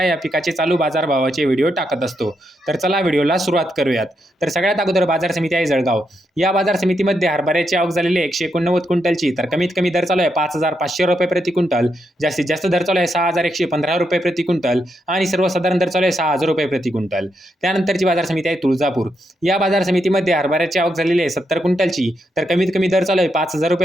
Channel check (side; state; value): both; normal; correlation 0.82